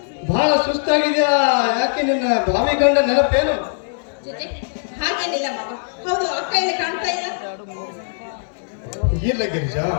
ಬಹಳ ಸುಸ್ತಾಗಿದ್ಯಾ? ಯಾಕೆ ನಿನ್ನ ಭಾವಿ ಗಂಡ ನೆನಪೇನು? ಹಾಗೇನಿಲ್ಲ ಮಾವ. ಹೌದು, ಅಕ್ಕ ಇಲ್ಲಿ ಕಾಣ್ತಾ ಇಲ್ಲ. ಇಲ್ಲ ಗಿರಿಜಾ,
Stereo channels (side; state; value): right; silent; digital silence